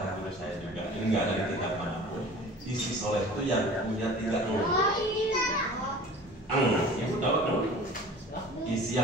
guru saya juga, ini nggak ada di kitab manapun. Istri soleh itu yang punya 3 Ibu tahu isi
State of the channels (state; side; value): normal; both; correlation 0.42